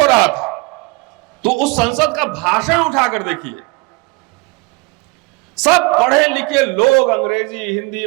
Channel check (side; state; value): left; quieter; 26.1 dB